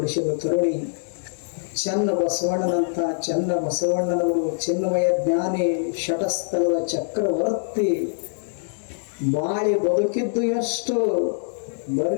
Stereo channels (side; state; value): right; silent; 63 dB below the other